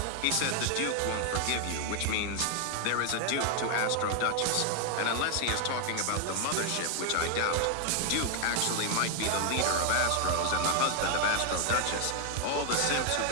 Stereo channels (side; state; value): both; different; correlation 0.00